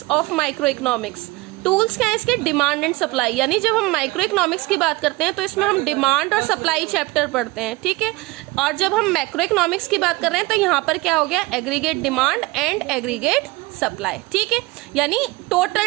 of micro economics, tools क्या है इसके? Demand and supply. यानी जब हम माइक्रो इकोनॉमिक्स की बात करते हैं तो इसमें हम डिमांड और सप्लाई चैप्टर पढ़ते हैं, ठीक है। और जब हम मैक्रो इकोनॉमिक्स की बात कर रहे हैं तो यहाँ पर क्या हो गया? Aggregate demand and aggregate supply, ठीक है, यानी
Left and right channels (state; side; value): quieter; left; 22.1 dB